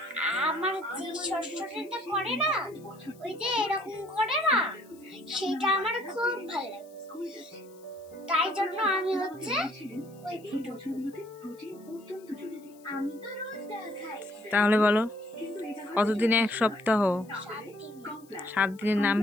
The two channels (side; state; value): left; noise; hiss, 27 dB below the sound